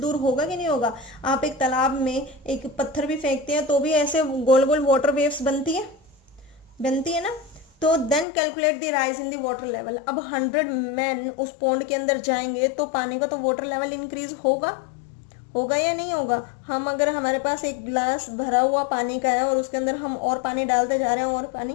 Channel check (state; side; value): drops out; right; at 8.2 s